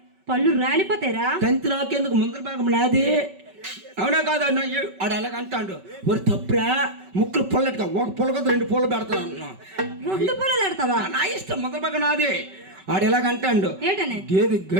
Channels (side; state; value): left; late; 5.2 ms